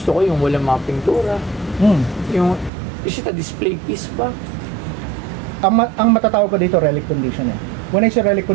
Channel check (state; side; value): drops out; left; at 2.7 s